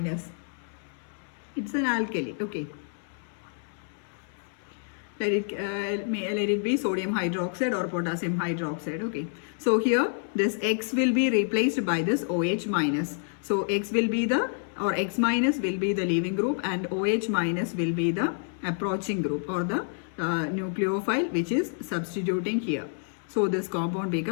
It's an alkali. Okay. Let it be sodium hydroxide or potassium hydroxide. Okay, so here this X will be replaced by this OH minus. So X will be the, or X minus will be the leaving group, and OH minus will be the approaching group, or the nucleophile which is substituting here. So this compound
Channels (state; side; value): silent; right; 59 dB below the other